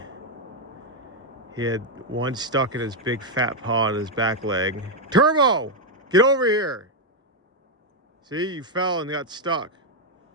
he had one stuck in his big fat paw on his back leg. Turbo, get over here. See, you fell and got stuck.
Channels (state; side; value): normal; both; correlation 0.02